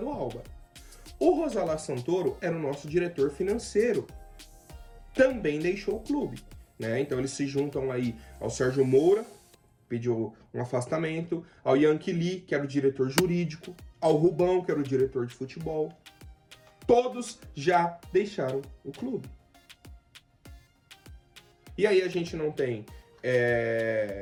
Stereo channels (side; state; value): both; identical; correlation 1.00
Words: Alba. O Rosalá Santoro era o nosso diretor financeiro. Também deixou o clube, né? Então eles se juntam aí ao Sérgio Moura, pediu um afastamento, ao Yankee Lee, que era o diretor jurídico, ao Rubão, que era o diretor de futebol. Todos já deixaram o clube. E aí a gente não tem